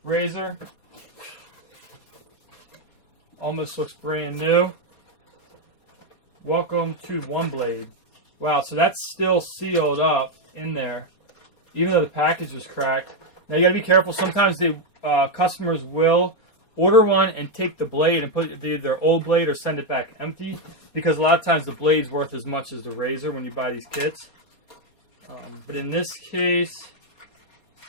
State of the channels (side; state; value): right; late; 4.3 ms